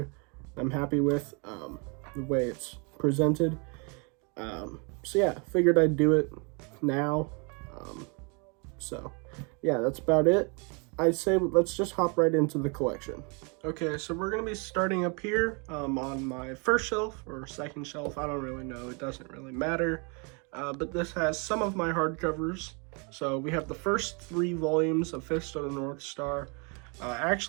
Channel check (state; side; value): quieter; left; 34.0 dB